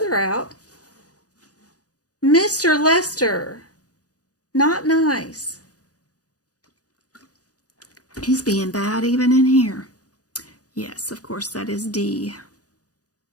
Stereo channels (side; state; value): right; late; 0.67 ms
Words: out. Mr. Lester, not nice. He's being bad even in here. Yes, of course, that is D.